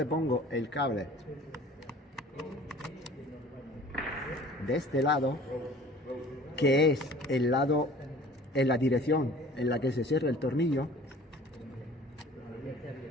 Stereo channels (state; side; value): normal; both; correlation 0.47